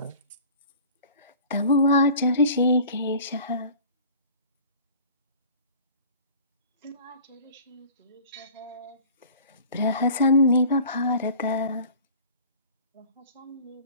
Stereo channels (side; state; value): both; inverted; correlation -0.44